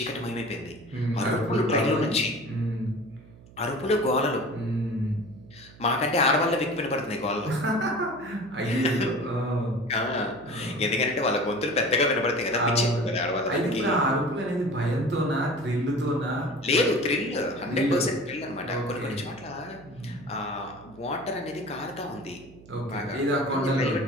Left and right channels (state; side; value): noise; right; hum, 22 dB below the sound